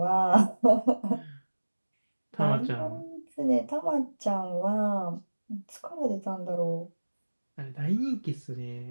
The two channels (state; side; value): inverted; both; correlation -1.00